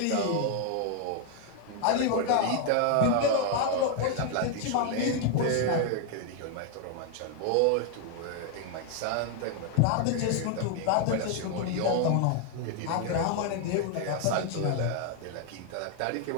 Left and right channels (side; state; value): both; different; correlation 0.00